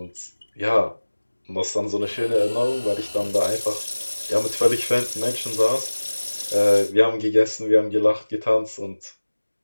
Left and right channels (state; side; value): inverted; both; correlation -1.00